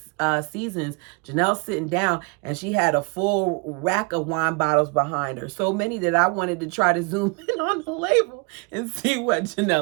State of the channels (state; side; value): quieter; left; 31.5 dB